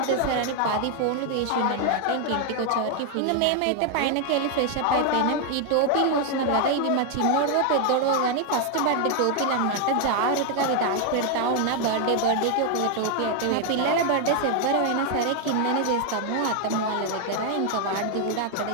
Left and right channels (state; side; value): different; both; correlation 0.00